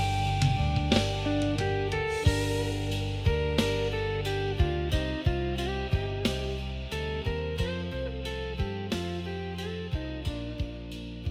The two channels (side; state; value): both; identical; correlation 1.00